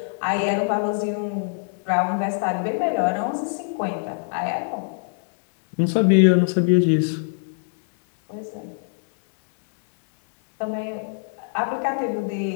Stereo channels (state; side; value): silent; right; digital silence